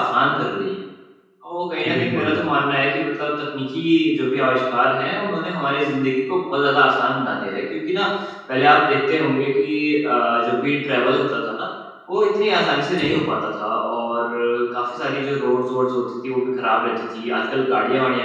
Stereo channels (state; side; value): identical; both; correlation 1.00